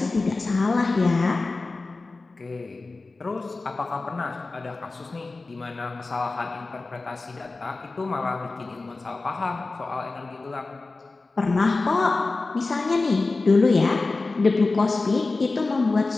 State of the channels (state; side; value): quieter; right; 3.5 dB